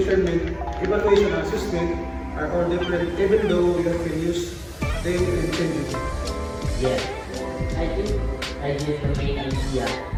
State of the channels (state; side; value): identical; both; correlation 1.00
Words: evaluation, and assessment are all different even though you can use them interchangeably. Yes, I think I get the main idea.